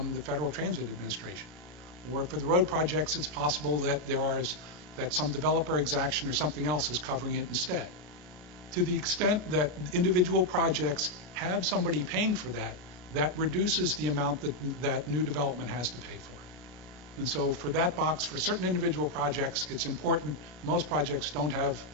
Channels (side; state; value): left; late; 33 ms